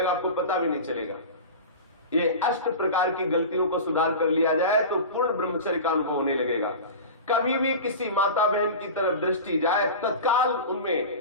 आपको पता भी नहीं चलेगा। ये 8 प्रकार की गलतियों को सुधार कर लिया जाए तो पूर्ण ब्रह्मचर्य का अनुभव होने लगेगा। कभी भी किसी माता बहन की तरफ दृष्टि जाए, तत्काल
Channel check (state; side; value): inverted; both; correlation -0.30